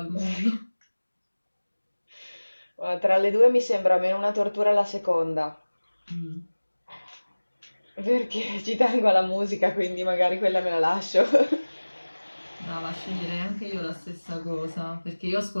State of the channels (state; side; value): inverted; both; correlation -1.00